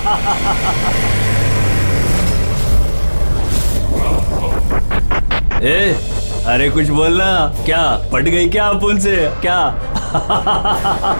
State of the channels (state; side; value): inverted; both; correlation -1.00